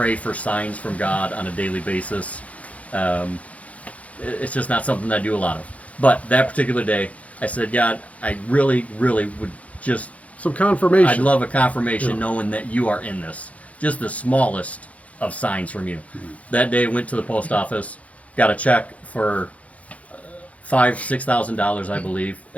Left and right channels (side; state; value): right; late; 0.067 ms